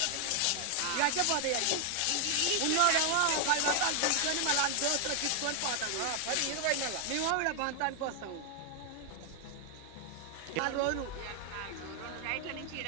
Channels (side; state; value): both; different; correlation 0.00